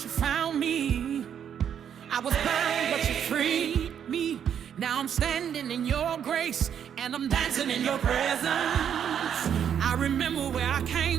you found me. I was bound, but you freed me. Now I'm standing in your grace, and I'm dancing in your presence. I remember where I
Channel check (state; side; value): quieter; left; 8.6 dB